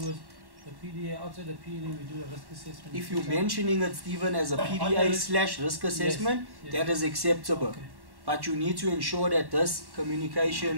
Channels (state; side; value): late; left; 1.1 ms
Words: is the PDA, outside the PDA we do a risk assessment. If you're mentioning it, Stephen, as a PDA / risk assessment, yes. that is acceptable. Okay. But you need to ensure that this